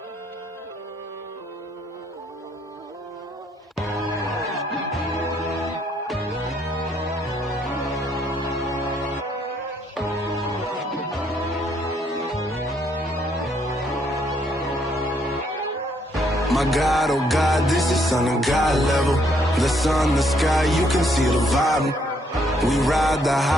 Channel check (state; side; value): normal; both; correlation 0.70